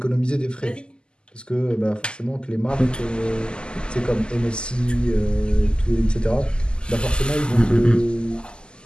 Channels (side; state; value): right; late; 0.048 ms